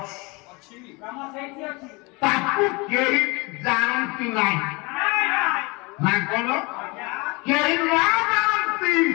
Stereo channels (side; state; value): right; quieter; 26.8 dB